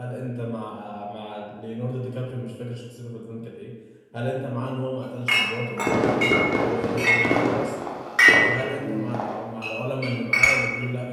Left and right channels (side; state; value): both; identical; correlation 1.00